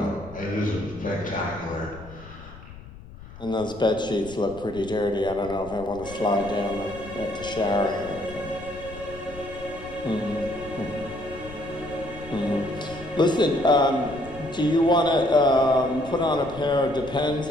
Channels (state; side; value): noise; left; rumble, 16 dB below the sound